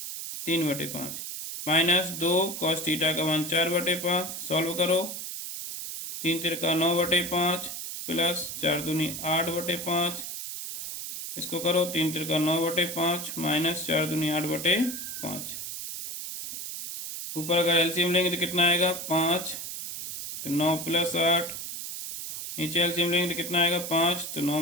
माइनस 2 कॉस थीटा का मान 4/5, सॉल्व करो, 3 तिरका 9/5 प्लस 4 दूनी 8/5, इसको करो 3 तिरका 9/5 माइनस 4 दूनी 8/5, ऊपर अगर एलसीएम लेंगे तो कितना आएगा 5, तो 9 प्लस 8, नीचे एलसीएम लेंगे तो कितना आएगा 5, तो 9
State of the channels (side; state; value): right; noise; hiss, 7 dB below the sound